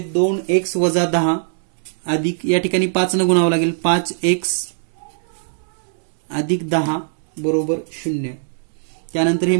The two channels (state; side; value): silent; left; digital silence